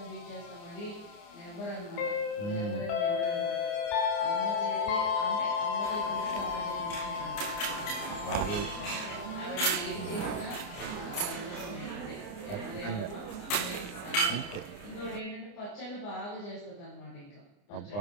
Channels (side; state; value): right; late; 29 ms